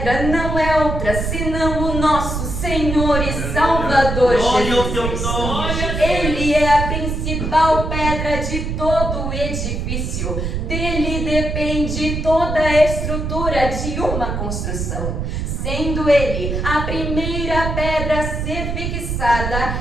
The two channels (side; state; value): right; noise; rumble, 3 dB below the sound